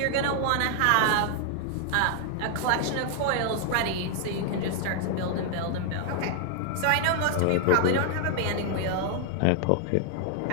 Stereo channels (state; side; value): different; both; correlation 0.00